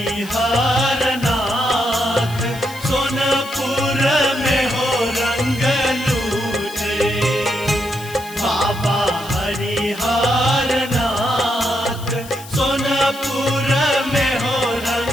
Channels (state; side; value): noise; left; hiss, 17 dB below the sound